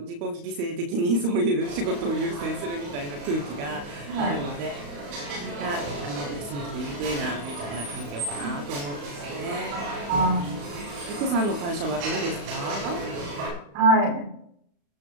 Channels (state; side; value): late; left; 35 ms